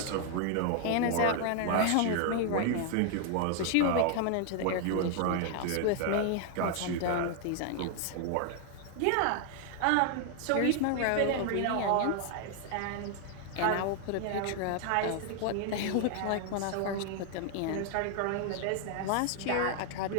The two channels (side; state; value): both; different; correlation 0.00